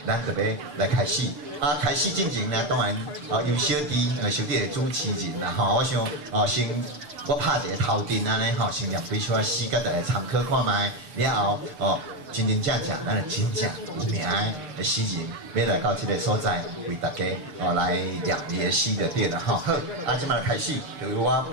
咱特别来开始。开始进前呢，当然由小弟小弟的主持人啦我想先我拍一个头阵安尼先念几首诗，甲大家参考看卖。了后真正咱就真正有名的诗人，要来到这个所在，为大家来念伊的诗就对了好，即摆开始，就由我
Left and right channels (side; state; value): left; late; 6.6 ms